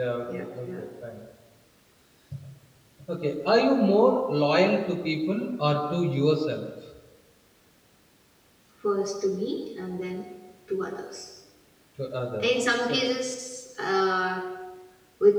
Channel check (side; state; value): both; identical; correlation 1.00